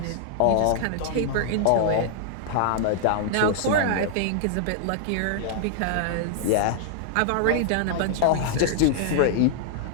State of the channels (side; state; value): both; different; correlation -0.01